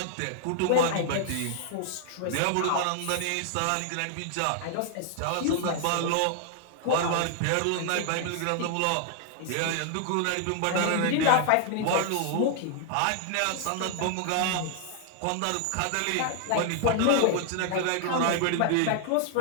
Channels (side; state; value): both; different; correlation 0.00